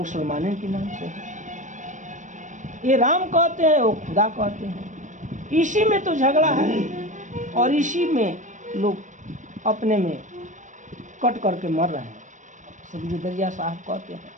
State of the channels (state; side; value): late; left; 0.36 ms